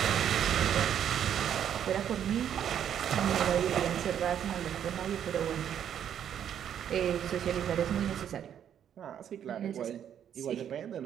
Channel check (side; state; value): left; quieter; 9.4 dB